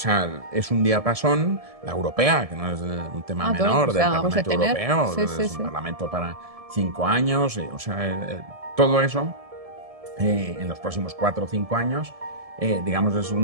es un diapasón. La europea, que no es un tema menor, del Parlamento Europeo, es un parlamento para 5 años, o sea, todo eso en los próximos 4 o 5 años, digamos, es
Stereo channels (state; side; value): late; left; 1.7 ms